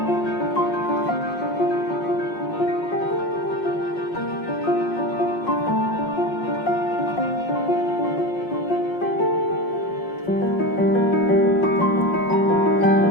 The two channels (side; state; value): right; late; 5.5 ms